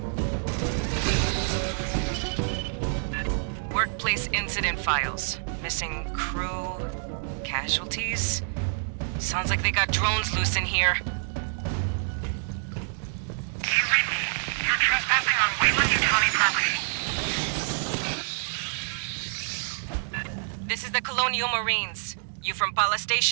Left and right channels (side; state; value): left; silent; digital silence